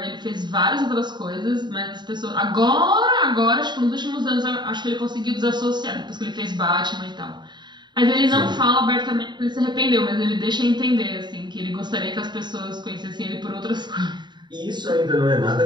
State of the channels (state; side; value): late; left; 0.21 ms